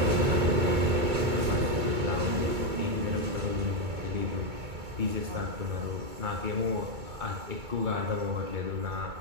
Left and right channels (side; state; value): left; late; 2.2 ms